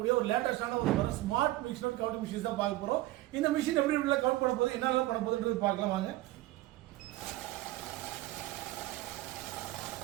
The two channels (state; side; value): quieter; left; 17.2 dB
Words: ஒரு லேட்டஸ்டான ஒரு smart mix note count machine தான் பார்க்க போகிறோம். இந்த மிஷின் எப்படி எப்படி கவுண்ட் பண்ண போகுது, என்னெல்லாம் பண்ண போகுதுன்றது பார்க்கலாம் வாங்க.